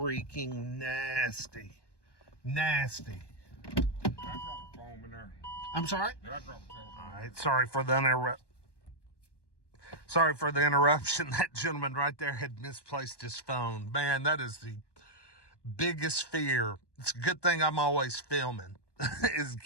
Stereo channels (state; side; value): late; right; 1.2 ms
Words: nasty. Nasty. Did I drop a foam in there? I'm sorry? Did I drop a foam? All right, sorry for the interruption. That gentleman right there had misplaced his phone. Man, that is the biggest fear. It's a good thing I'm always filming. Is